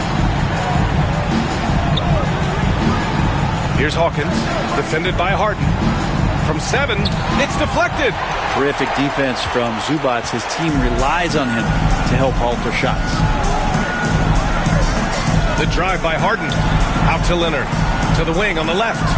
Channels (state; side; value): identical; both; correlation 1.00